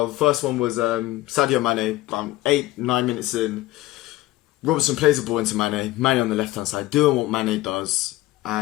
the first one was Sadio Mane, around 8-9 minutes in. Robertson plays the ball into Mane. Mane on the left-hand side, doing what Mane does,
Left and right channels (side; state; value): right; quieter; 17.5 dB